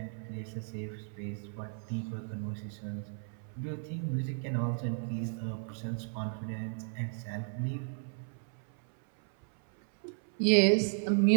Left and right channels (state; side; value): silent; left; 55 dB below the other